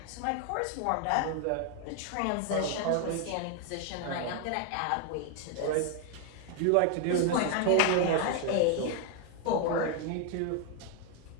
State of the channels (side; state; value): both; different; correlation 0.01